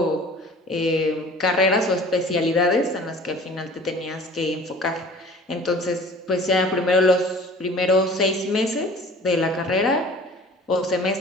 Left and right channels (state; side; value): normal; both; correlation 0.46